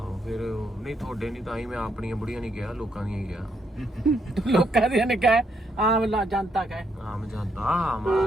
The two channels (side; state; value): both; normal; correlation 0.76